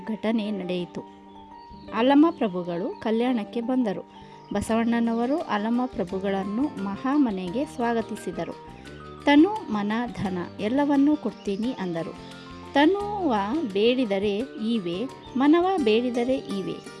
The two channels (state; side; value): identical; both; correlation 1.00